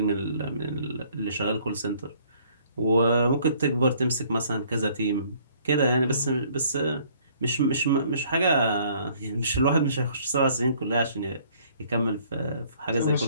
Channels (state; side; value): inverted; both; correlation -0.60